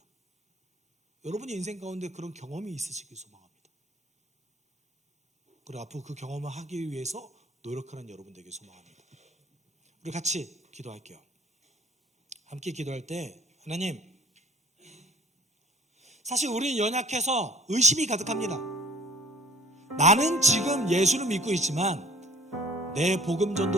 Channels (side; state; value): both; normal; correlation 0.52